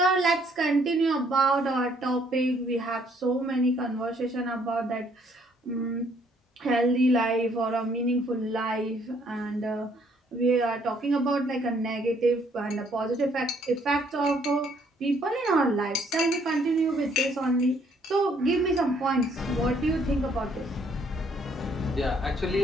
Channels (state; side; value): normal; both; correlation 0.66